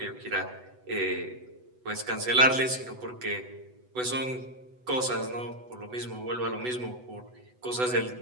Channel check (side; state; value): left; late; 8.0 ms